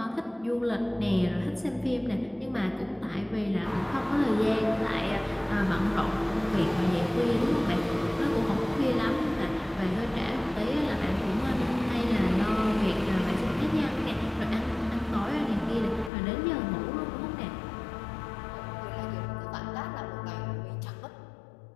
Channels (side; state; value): right; drops out; at 16.1 s